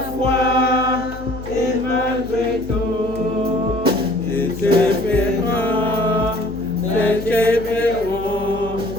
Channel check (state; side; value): noise; left; hum, 14 dB below the sound